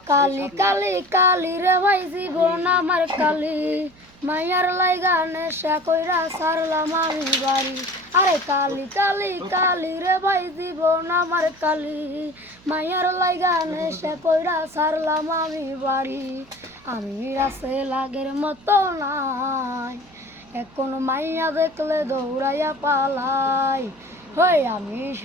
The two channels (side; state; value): right; noise; hum, 26 dB below the sound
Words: কালি কালি কালি রে ভাই জীবন আমার কালি, মাইয়ার লাইগা নেশা কইরা সারলাম আমি বাড়ি। আরে কালি কালি কালি রে ভাই জীবন আমার কালি, মাইয়ার লাইগা নেশা কইরা সারলাম আমি বাড়ি। আমি রাসে লাগের মতো নাই, এখন মাইয়া দেখলে দৌড়াইয়া পালাই। হই আমি